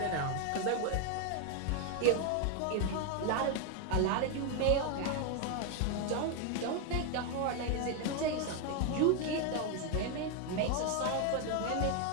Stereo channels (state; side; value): different; both; correlation 0.01